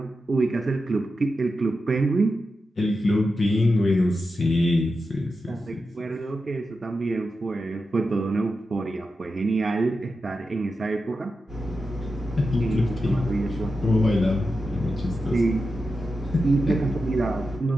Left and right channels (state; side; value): normal; both; correlation 0.90